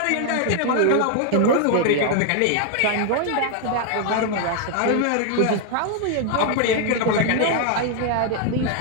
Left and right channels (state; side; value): different; both; correlation 0.00